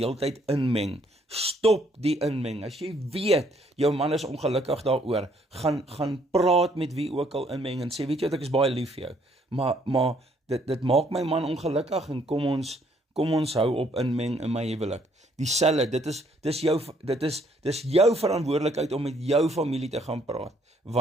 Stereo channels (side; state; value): both; normal; correlation 0.66